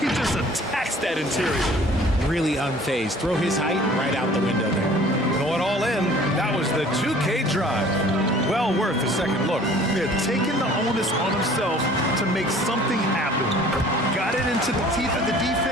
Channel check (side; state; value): both; normal; correlation 0.51